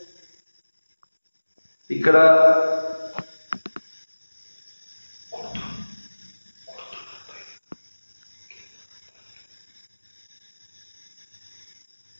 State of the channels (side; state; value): both; inverted; correlation -1.00